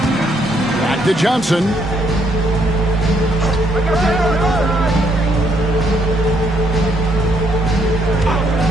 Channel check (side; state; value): both; normal; correlation 0.72